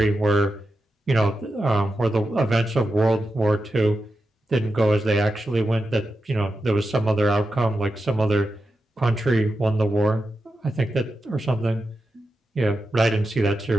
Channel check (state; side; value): normal; both; correlation 0.90